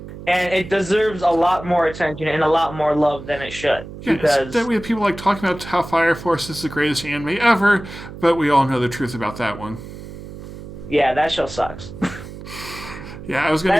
and it deserves a lot more attention and a lot more love than it should. Yeah, because that we have people talking about how Fire Force is the greatest anime ever, but we all know the truth about that one. Yeah, that show sucks. Yeah, I was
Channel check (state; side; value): noise; right; hum, 13 dB below the sound